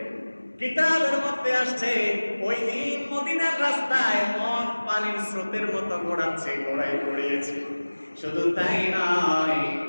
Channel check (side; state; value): both; inverted; correlation -1.00